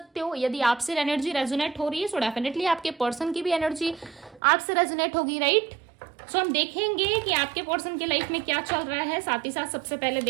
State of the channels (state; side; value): drops out; left; at 4.4 s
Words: हो। यदि आपसे एनर्जी रेजोनेट हो रही है, सो डेफिनेटली आपके पर्सन की भी एनर्जी आपसे रेजोनेट होगी, राइट। सो हम देखेंगे कि आपके पर्सन के लाइफ में क्या चल रहा है, साथ ही साथ सबसे पहले